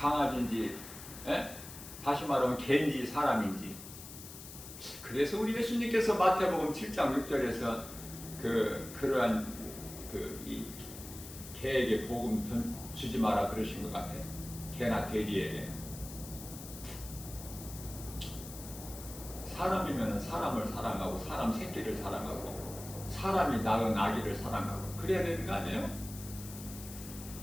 다시 말하면 개인지 사람인지. 그래서 우리 예수님께서 마태복음 7장 6절에서 그러한 이 개에게 복음 주지 마라 그러신 것 같아요. 개나 돼지에게. 사람이면 사람을 사랑하고 사람 새끼를 사랑하고 사람이 낳은 아기를 사랑하고 그래야 되는 거 아니에요?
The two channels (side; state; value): left; noise; hiss, 13 dB below the sound